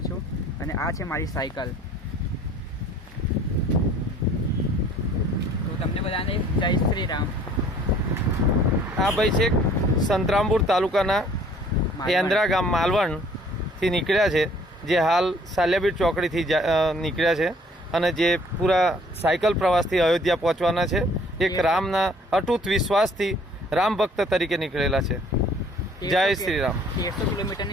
છું. અને આ છે મારી સાયકલ. તો તમને બધાને જય શ્રી રામ. આ ભાઈ છે સંતરામપુર તાલુકાના એન્દ્રા ગામ માલવણથી નીકળ્યા છે, જે હાલ સાલિયાબીડ ચોકડીથી નીકળ્યા છે અને જે પૂરા સાયકલ પ્રવાસથી અયોધ્યા પહોંચવાના છે. એક રામના અટૂટ વિશ્વાસથી રામ ભક્ત તરીકે નીકળેલા છે. જય શ્રી રામ. 1300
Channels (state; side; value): normal; both; correlation 0.56